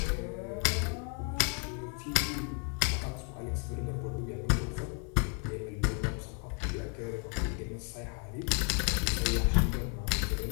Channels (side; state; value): right; quieter; 34.4 dB